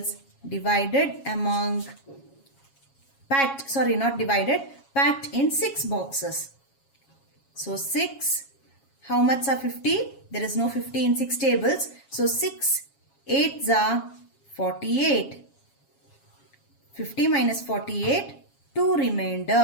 divided among, packed in 6 boxes. So 6, how much are 50? There is no 50 in 6 tables. So 6 8s are 48. 50 minus 48, 2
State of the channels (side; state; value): right; late; 7.3 ms